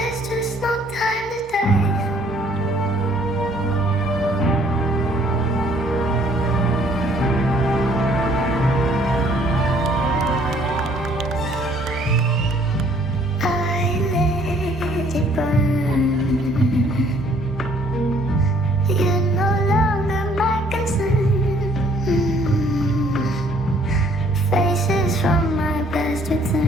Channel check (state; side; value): normal; both; correlation 0.61